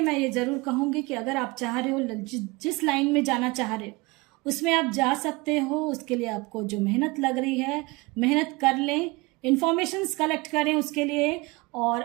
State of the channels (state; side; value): quieter; left; 24.5 dB